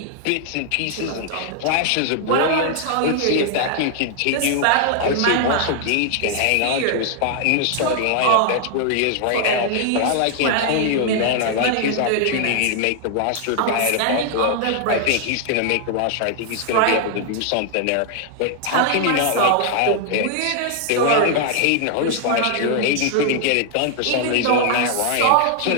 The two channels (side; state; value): both; different; correlation 0.00